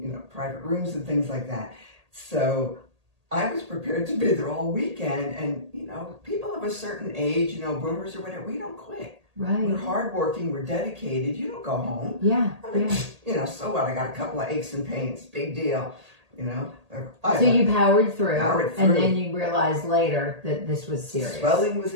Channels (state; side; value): late; left; 1.8 ms